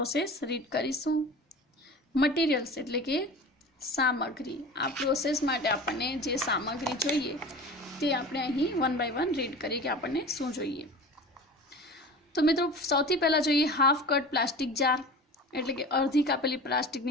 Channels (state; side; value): normal; both; correlation 0.36